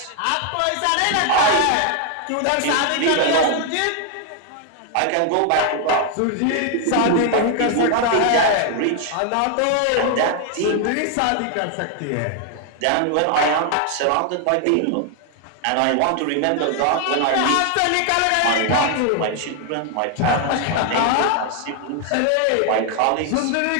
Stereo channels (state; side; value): different; both; correlation 0.00